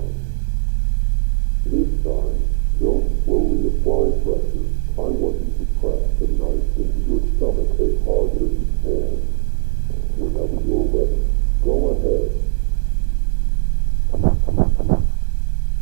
This time, don't slowly apply pressure. I want you to press the knife into your stomach as hard as you can. Whenever you're ready, go ahead.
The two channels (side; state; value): left; silent; digital silence